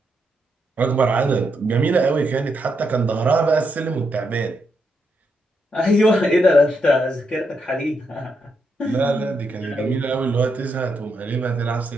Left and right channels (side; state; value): both; normal; correlation 0.81